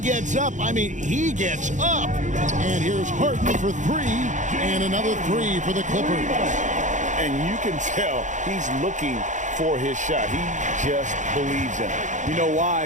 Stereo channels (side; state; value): left; late; 0.36 ms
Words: up, I mean, he gets up. And here's Harden for 3, and another 3 for the Clippers. And you can tell he's looking for his shot. He just believes in it. You know